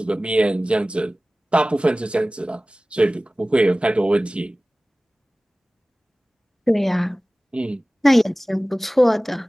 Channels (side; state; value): both; normal; correlation 0.98